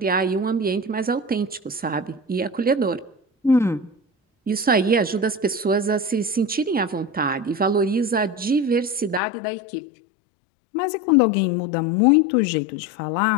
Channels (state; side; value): drops out; right; at 9.2 s